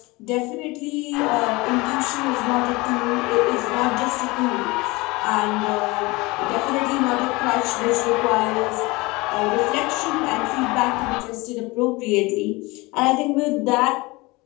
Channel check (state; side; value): quieter; right; 23.3 dB